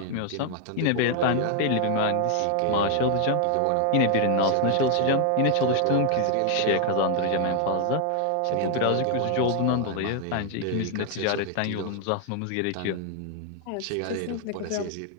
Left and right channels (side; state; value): both; different; correlation 0.00